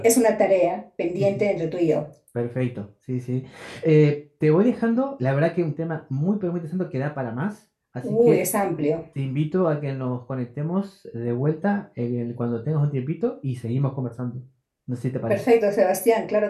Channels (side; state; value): both; identical; correlation 1.00